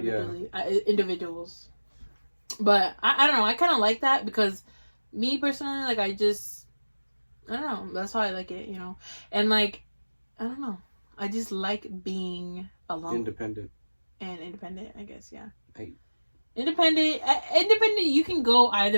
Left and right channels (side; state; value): both; inverted; correlation -1.00